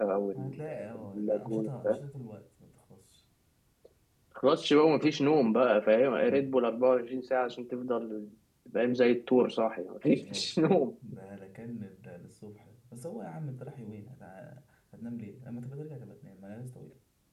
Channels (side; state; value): both; identical; correlation 1.00